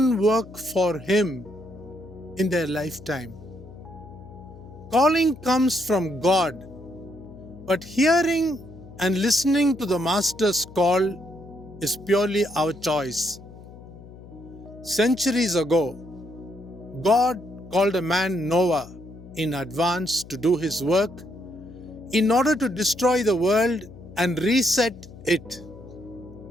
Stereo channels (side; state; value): left; noise; hum, 18 dB below the sound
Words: work for Him in their lifetime. Calling comes from God, but hearing and listening to the Master's call is purely our choice. Centuries ago, God called a man Noah in advance to do His work in order to destroy the world and reset it.